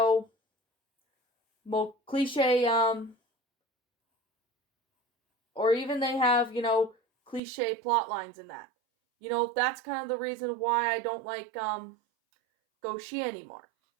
more cliche or even they have, cliche plot lines in that. That's kind of the reason why I don't like Goshi anymore.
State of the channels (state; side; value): drops out; left; at 7.4 s